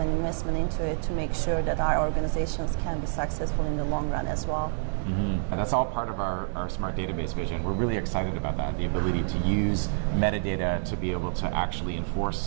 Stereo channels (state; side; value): silent; left; digital silence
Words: investment into it to make sure that our organizations can be successful in the long run as well. And that's all part of our smart database vision. We're really excited about that, the ability to use metadata to be able to actually